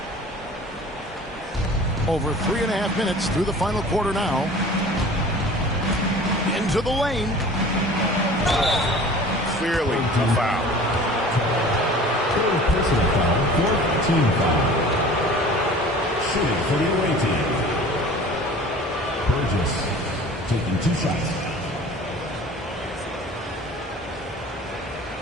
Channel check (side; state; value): both; normal; correlation 0.43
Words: Over 3.5 minutes through the final quarter now. Into the lane. Clearly a foul. Personal foul, fourth team foul. Shooting for the away team. Burgess taking 2 shots.